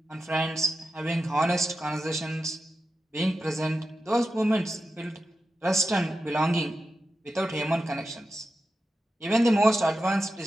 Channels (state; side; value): normal; both; correlation 0.90